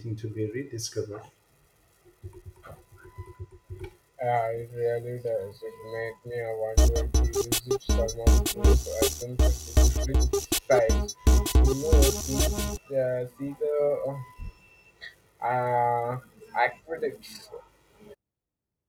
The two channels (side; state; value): both; identical; correlation 1.00